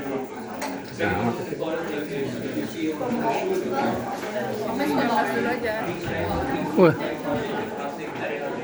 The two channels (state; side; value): identical; both; correlation 1.00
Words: Mas ngelas dulu aja. Wah.